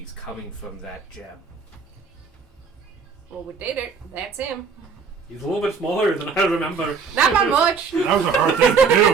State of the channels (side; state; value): left; quieter; 5.5 dB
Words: coming from that gem. Well, we did it. That's him. He's a little bit smaller than I remember. Not by much. That was a hard thing to